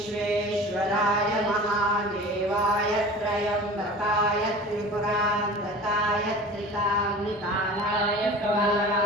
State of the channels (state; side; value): normal; both; correlation 0.38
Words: महादेवाय त्रयम्बकाय त्रिपुरान्तकाय त्रिकाग्निकालाय